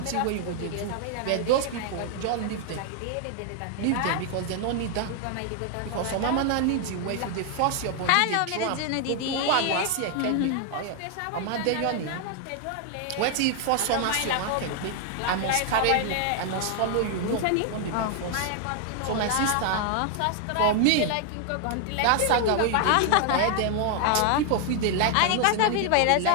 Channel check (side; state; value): both; different; correlation 0.00